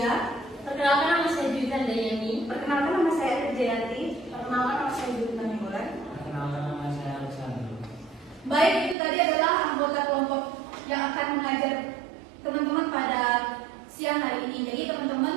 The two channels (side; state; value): left; drops out; at 9.0 s